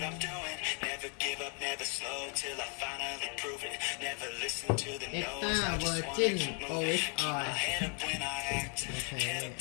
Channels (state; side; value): quieter; right; 38.5 dB